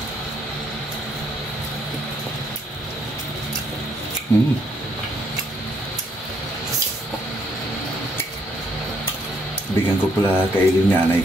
Bigyan ko pala kaili yung nanay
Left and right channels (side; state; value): both; normal; correlation 0.71